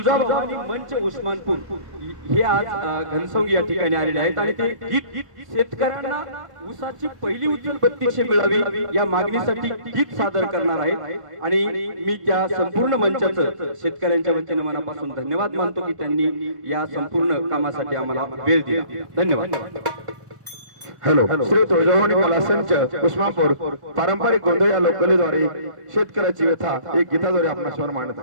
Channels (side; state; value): left; late; 1.5 ms